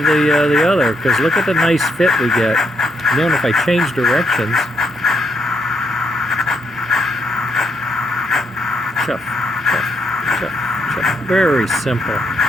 the other, because look at the nice fit we get. And then if I change directions, chuff, chuff, chuff, chuff. Very simple,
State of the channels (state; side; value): normal; both; correlation 0.76